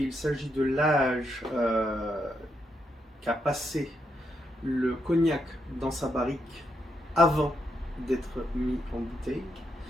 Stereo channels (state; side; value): normal; both; correlation 0.80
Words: s'agit de l'âge qu'a passé le cognac dans sa barrique avant d'être mis en bouteille.